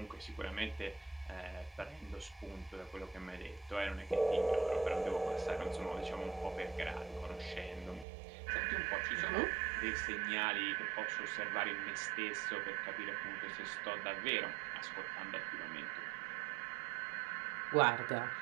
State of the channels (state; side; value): drops out; left; at 8.1 s